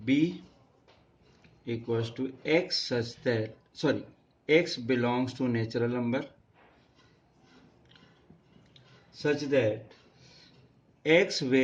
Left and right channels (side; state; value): both; identical; correlation 1.00